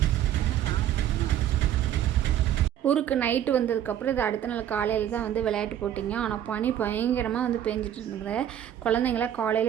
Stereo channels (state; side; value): quieter; left; 10.8 dB